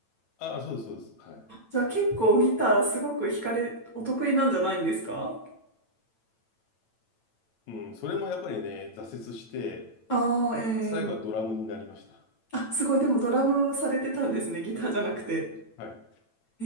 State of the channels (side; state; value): right; late; 9.0 ms